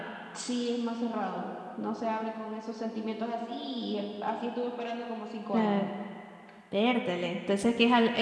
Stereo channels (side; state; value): both; identical; correlation 1.00